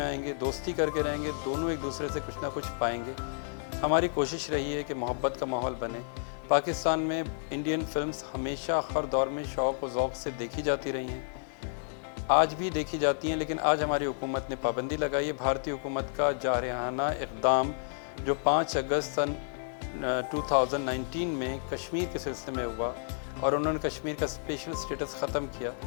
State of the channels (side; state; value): right; silent; 57 dB below the other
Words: آئیں گے، دوستی کر کے رہیں گے، دونوں ایک دوسرے سے کچھ نہ کچھ پائیں گے۔ ہماری کوشش رہی ہے کہ محبت کا ماحول بنے۔ پاکستان میں انڈین فلمز ہمیشہ ہر دور میں شوق و ذوق سے دیکھی جاتی رہی ہیں، آج بھی دیکھی جاتی ہیں، لیکن آج ہماری حکومت نے پابندی لگائی ہے۔ بھارتی حکومت کا جارحانہ اقدام جو 5 اگست سن 2019 میں کشمیر کے سلسلے میں ہوا اور انہوں نے کشمیر کا اسپیشل اسٹیٹس ختم کیا،